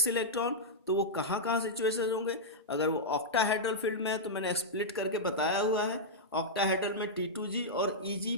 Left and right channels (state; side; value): normal; both; correlation -0.08